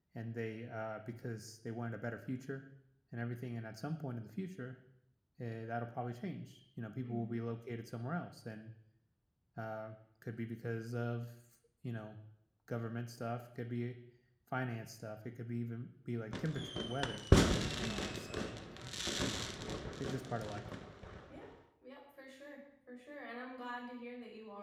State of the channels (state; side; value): identical; both; correlation 1.00